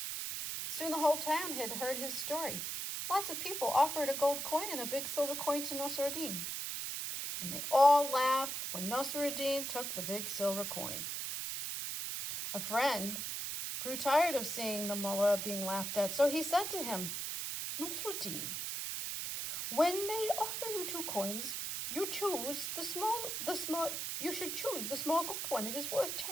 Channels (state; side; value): noise; right; hiss, 3 dB below the sound